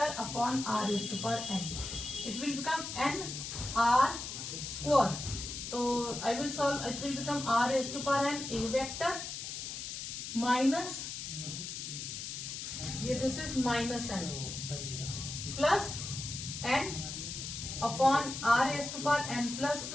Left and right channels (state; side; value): noise; left; hiss, 6 dB below the sound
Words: upon r is to power n. It will become n r square. So I will solve. It will become r is to power n a vector minus, this is minus n plus n upon r is to power n plus